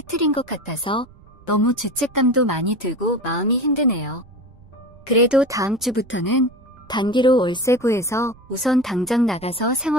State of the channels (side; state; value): right; noise; rumble, 25 dB below the sound